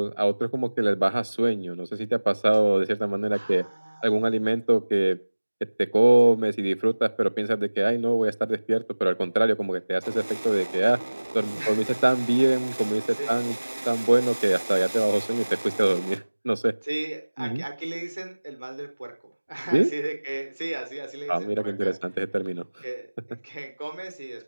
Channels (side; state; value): both; inverted; correlation -1.00